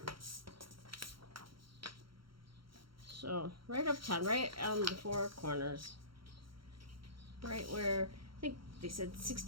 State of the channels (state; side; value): late; left; 0.74 ms